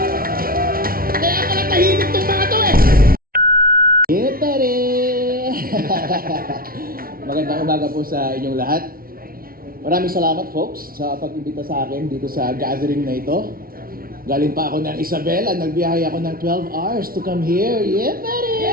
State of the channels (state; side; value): late; left; 0.43 ms